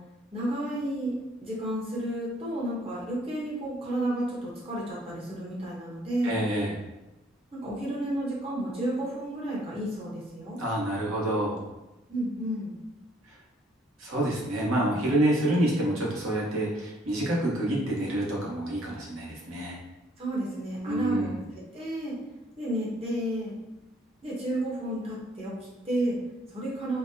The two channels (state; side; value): normal; both; correlation 0.64